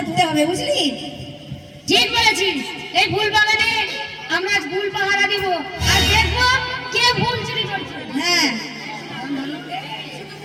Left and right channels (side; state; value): both; identical; correlation 1.00